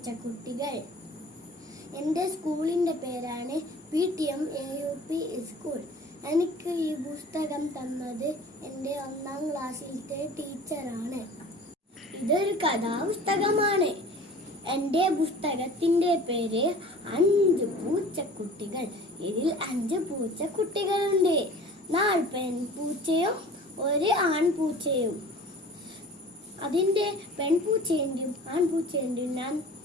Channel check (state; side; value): normal; both; correlation 0.43